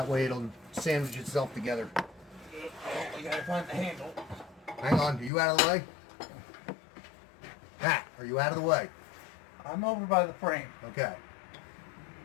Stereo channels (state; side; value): drops out; right; at 5.3 s